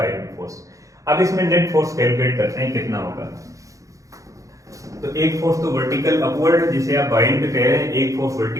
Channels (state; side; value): late; left; 0.16 ms